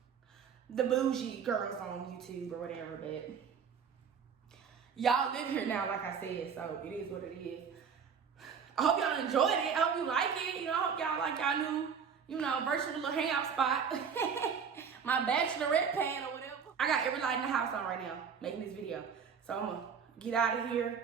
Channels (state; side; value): quieter; left; 6.7 dB